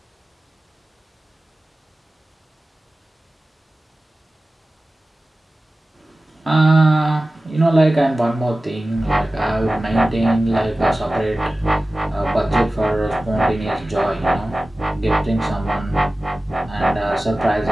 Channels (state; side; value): normal; both; correlation 0.96